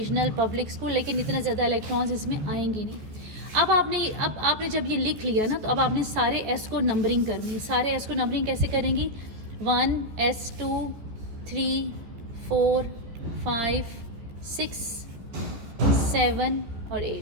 पब्लिक स्कूल, लेकिन इतना ज़्यादा इलेक्ट्रॉन्स इसमें आएंगे नहीं। अब आपने जब ये लिख लिया ना, तो अब आपने सारे S को नंबरिंग करनी है। सारे S को नंबरिंग कैसे करेंगी, 1S 2 3 4 5 6 7 और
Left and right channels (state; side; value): late; left; 14 ms